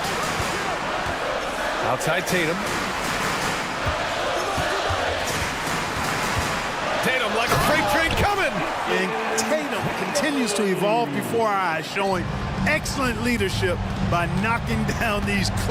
Outside Tatum. Tatum like a freight train coming. And Tatum continues to evolve before our eyes, showing excellent leadership by knocking down these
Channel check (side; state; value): both; identical; correlation 1.00